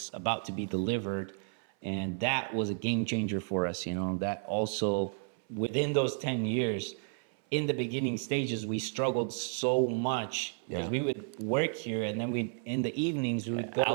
about to be delivered, and that was a game changer for us. You know, that also within those 10 years, in the beginning stages, we struggled so much because we would work here, and then in the evenings we would go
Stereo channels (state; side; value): silent; left; 56 dB below the other